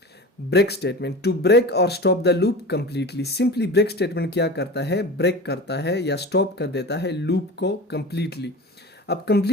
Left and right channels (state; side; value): normal; both; correlation 0.33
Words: ब्रेक स्टेटमेंट, टू ब्रेक और stop the loop completely. Simply break statement क्या करता है? ब्रेक करता है या स्टॉप कर देता है लूप को कंप्लीटली। अब